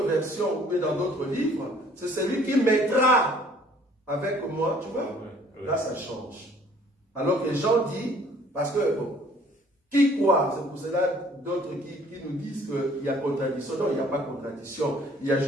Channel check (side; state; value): both; normal; correlation 0.57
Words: versions ou dans d'autres livres, c'est celui qui mettra avec moi, tu vois, là ça change. Alors que Jean dit, parce que, qui croit? C'est pour cela d'autres qui nous disent qu'il y a contradiction. Non, il n'y a pas de contradiction. Il y a